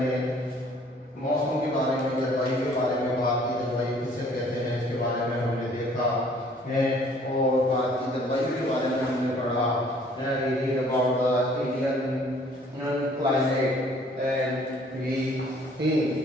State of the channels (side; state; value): both; normal; correlation 0.57